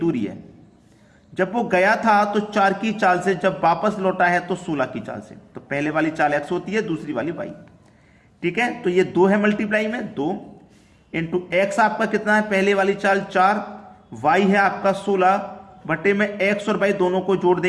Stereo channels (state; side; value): identical; both; correlation 1.00